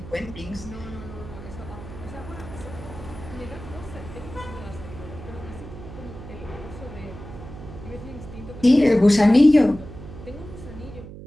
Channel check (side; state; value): right; noise; hum, 13 dB below the sound